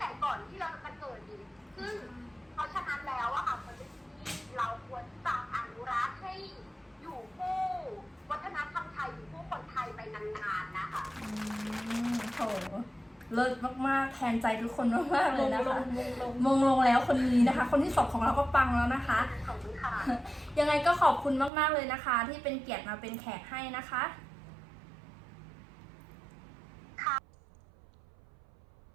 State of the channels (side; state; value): left; drops out; at 21.5 s